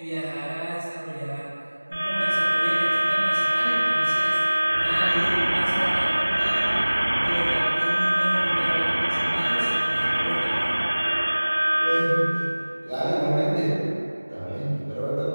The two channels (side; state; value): both; inverted; correlation -1.00